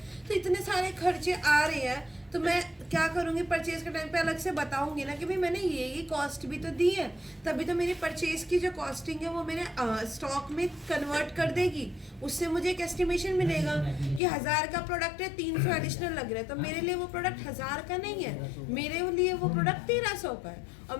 तो इतने सारे खर्चे आ रहे हैं। तो मैं क्या करूँगी, परचेज के टाइम पे अलग से बताऊंगी ना कि भाई मैंने ये कॉस्ट भी तो दी है, तभी तो मेरी परचेज की जो कॉस्टिंग है वो मेरे स्टॉक में कन्वर्ट कर देगी। उससे मुझे एक एस्टिमेशन मिलेगा कि 1000 का प्रोडक्ट है, 300 एडिशनल लग रहा है, तो मेरे लिए वो प्रोडक्ट 1000 का नहीं है, मेरे लिए वो प्रोडक्ट 1300 का है। और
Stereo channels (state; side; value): drops out; right; at 14.2 s